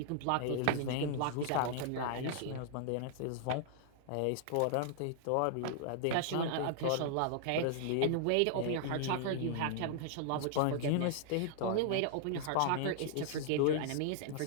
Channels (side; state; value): both; different; correlation -0.01